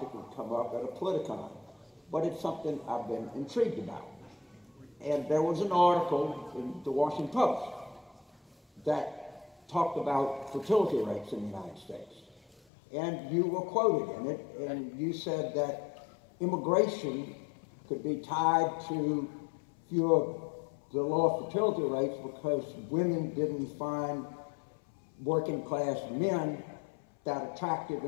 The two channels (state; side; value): drops out; right; at 12.6 s